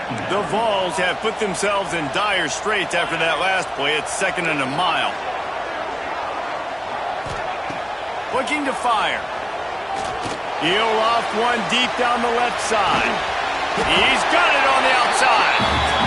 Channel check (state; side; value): identical; both; correlation 1.00